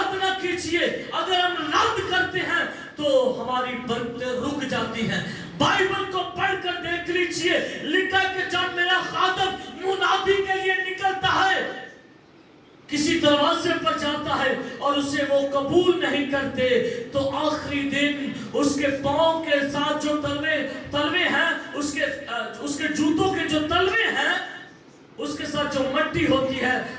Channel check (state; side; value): identical; both; correlation 1.00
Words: نہ کیجیے. اگر ہم رد کرتے ہیں تو ہماری برکتیں رک جاتی ہیں. بائبل کو پڑھ کر دیکھ لیجئے، لکھا کہ جب میرا خادم منادی کے لیے نکلتا ہے، کسی دروازے پر جاتا ہے اور اسے وہ قبول نہیں کرتے، تو آخری دن اس کے پاؤں کے ساتھ جو تلوے ہیں، اس کے جوتوں کے جو تلوے ہیں، اس کے ساتھ جو مٹی ہوتی ہے،